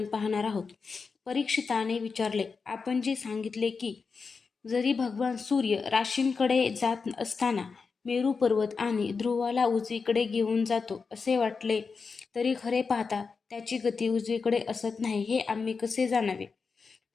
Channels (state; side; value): quieter; right; 5.0 dB